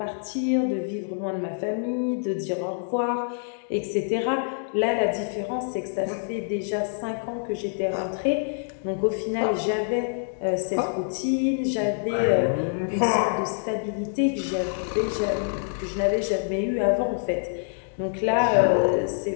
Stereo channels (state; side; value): silent; right; digital silence